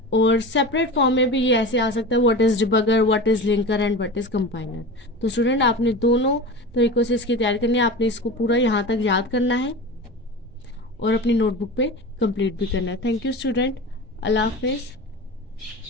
और सेपरेट फॉर्म में भी ये ऐसे आ सकता है, what is debugger, what is linker and what is compiler. तो स्टूडेंट आपने दोनों तरीकों से इसकी तैयारी करनी है, आपने इसको पूरा यहाँ तक याद करना है और अपनी नोटबुक पे कंप्लीट भी करना है। थैंक यू स्टूडेंट, अल्लाह हाफिज़।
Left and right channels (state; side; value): normal; both; correlation 0.30